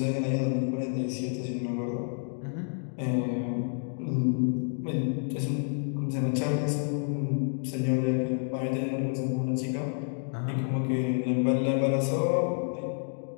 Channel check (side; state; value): right; silent; 58 dB below the other